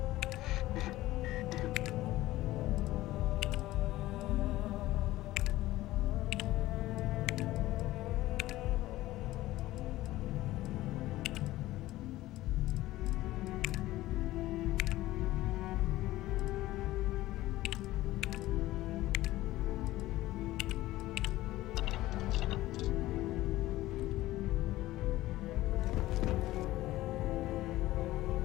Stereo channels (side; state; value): right; quieter; 16.5 dB